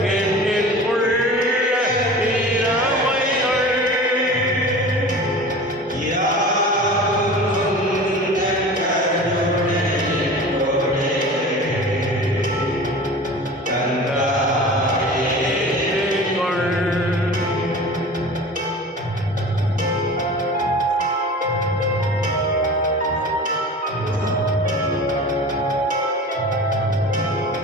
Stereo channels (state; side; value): normal; both; correlation 0.37